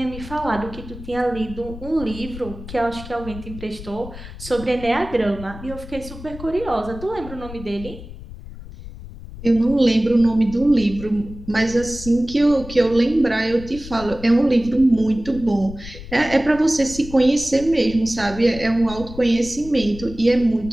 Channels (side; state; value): left; noise; rumble, 13 dB below the sound